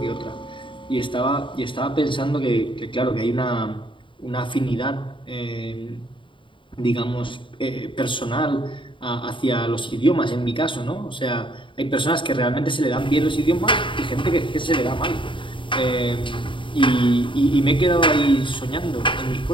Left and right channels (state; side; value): late; right; 0.24 ms